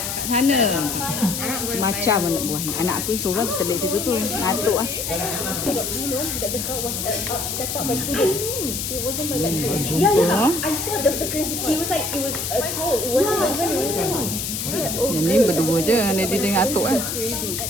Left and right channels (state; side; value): noise; left; hiss, 3 dB below the sound